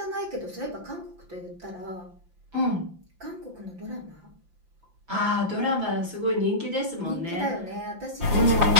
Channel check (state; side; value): late; left; 5.8 ms